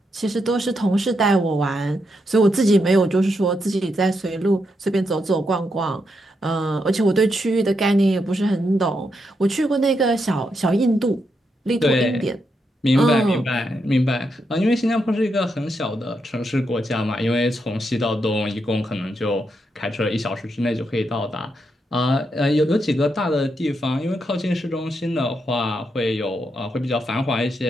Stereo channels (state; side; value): normal; both; correlation 0.82